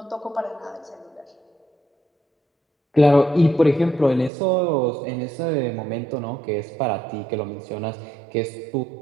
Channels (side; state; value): left; drops out; at 4.3 s